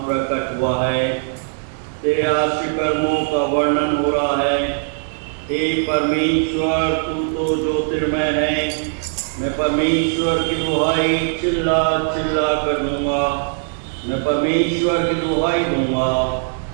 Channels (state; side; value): silent; left; 66 dB below the other